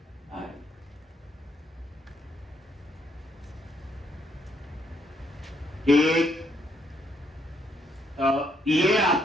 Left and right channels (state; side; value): normal; both; correlation 0.73